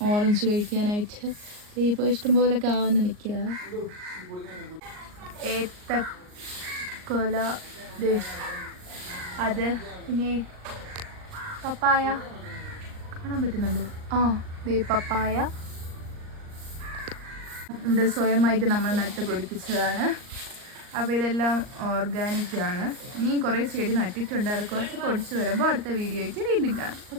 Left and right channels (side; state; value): left; late; 38 ms